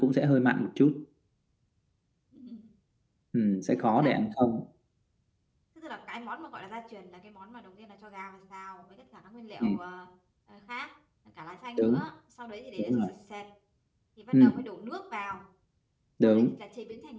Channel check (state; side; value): identical; both; correlation 1.00